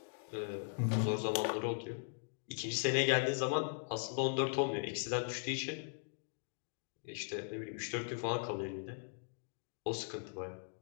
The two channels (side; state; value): right; silent; digital silence